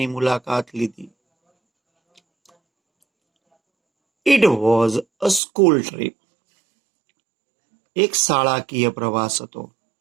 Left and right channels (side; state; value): left; drops out; at 5.4 s